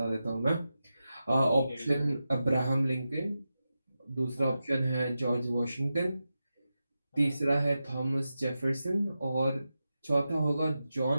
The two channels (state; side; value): inverted; both; correlation -0.91